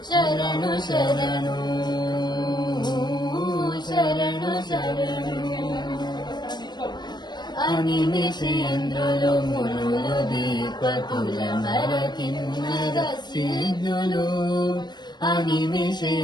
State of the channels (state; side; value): late; right; 0.21 ms